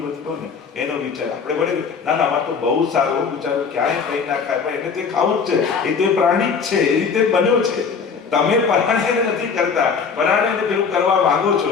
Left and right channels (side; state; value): right; quieter; 5.7 dB